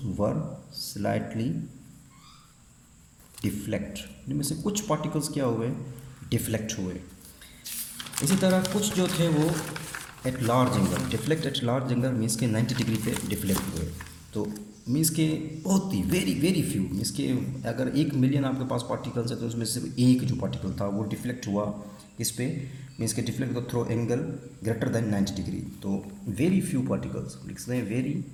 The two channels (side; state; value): both; identical; correlation 1.00